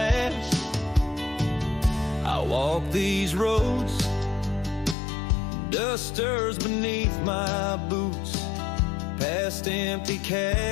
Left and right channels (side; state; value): right; drops out; at 5.0 s